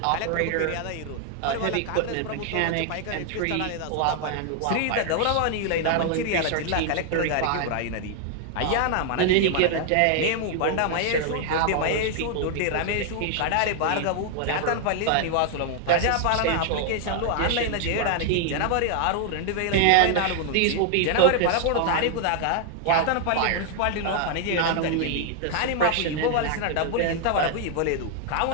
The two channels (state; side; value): different; both; correlation 0.00